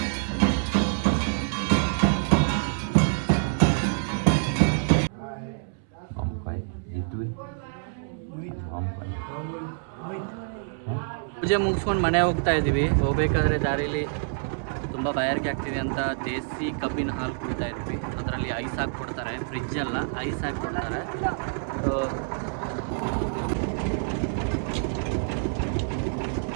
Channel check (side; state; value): left; silent; 60 dB below the other